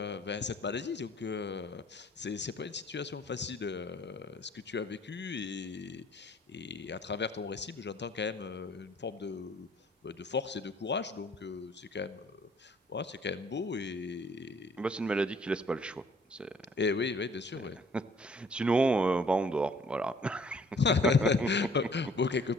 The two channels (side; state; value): both; normal; correlation 0.58